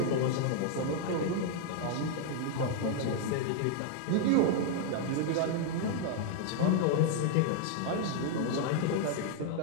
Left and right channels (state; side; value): different; both; correlation 0.00